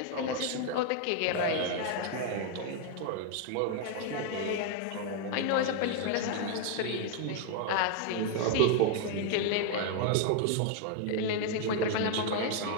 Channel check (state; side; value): different; both; correlation 0.00